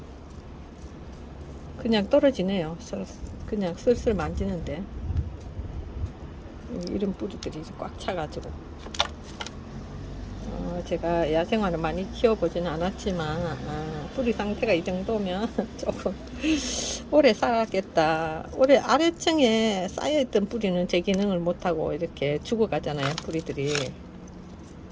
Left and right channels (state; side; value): identical; both; correlation 1.00